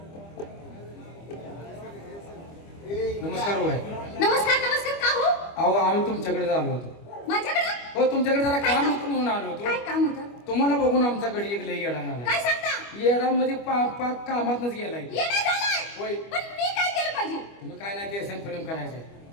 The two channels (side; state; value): right; late; 25 ms